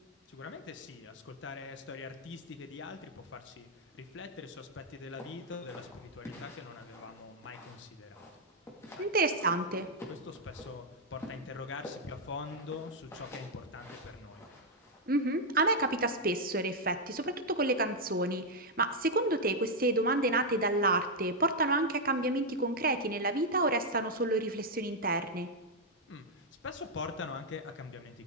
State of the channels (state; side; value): normal; both; correlation -0.01